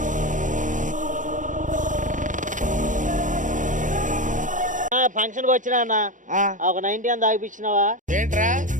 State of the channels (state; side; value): late; left; 0.37 ms